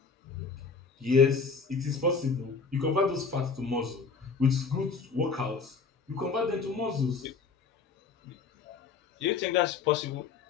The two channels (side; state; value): right; quieter; 5.1 dB